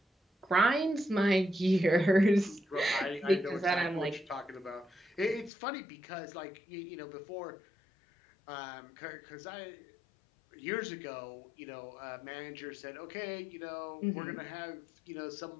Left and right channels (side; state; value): right; drops out; at 5.5 s